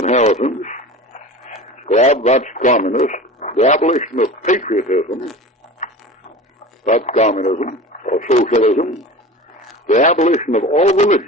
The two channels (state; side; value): normal; both; correlation 0.34